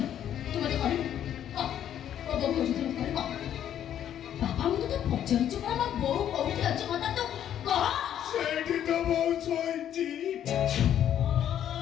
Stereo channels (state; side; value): quieter; right; 10.4 dB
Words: ତୁ ମତେ କହିବୁ ମୋ ବୋଉ କହୁଛି ତୁ ମତେ କହିବ। ବାପା ମୁଁ ତତେ ପଚାରୁଛି, ମୋ ବୋଉ କୋଉଠି ଅଛି ମତେ ତୁ କହ। ସେଇଠି ତ ବୋଉ